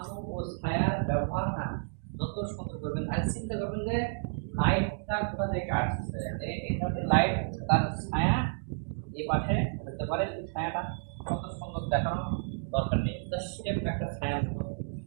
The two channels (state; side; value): silent; left; digital silence